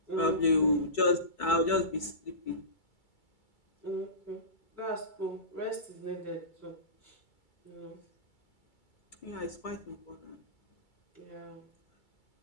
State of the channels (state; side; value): late; right; 2.3 ms